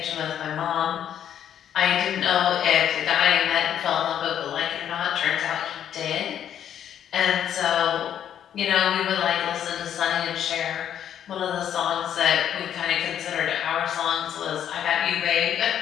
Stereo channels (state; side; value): quieter; right; 9.8 dB